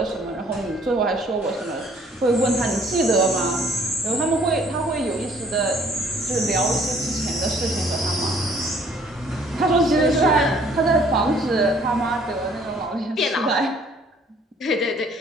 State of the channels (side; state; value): both; normal; correlation 0.59